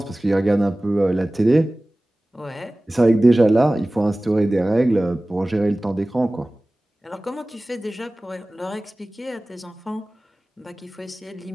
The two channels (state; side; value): normal; both; correlation 0.98